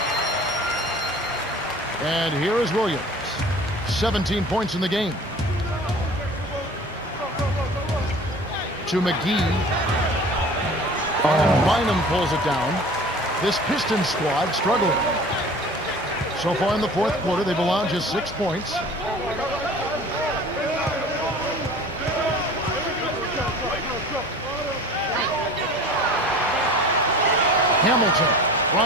And here is Williams. 17 points in the game. To McGee. And Bynum pulls it down. This Pistons squad struggling. So far in the fourth quarter, they've allowed just 6 points. Hamilton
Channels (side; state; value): both; normal; correlation 0.43